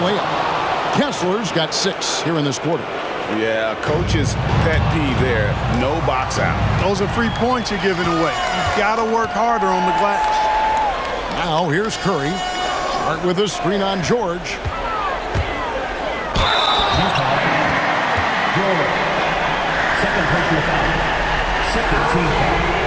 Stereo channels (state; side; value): identical; both; correlation 1.00